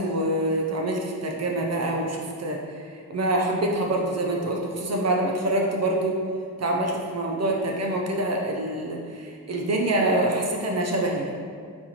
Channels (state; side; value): normal; both; correlation -0.04